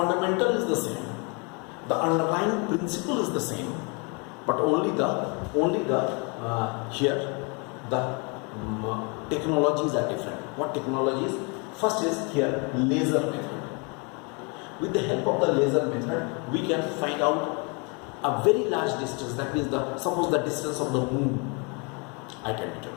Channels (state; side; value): quieter; right; 32.6 dB